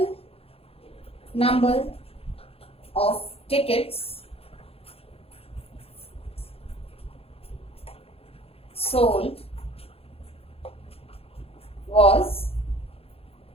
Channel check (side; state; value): right; late; 0.28 ms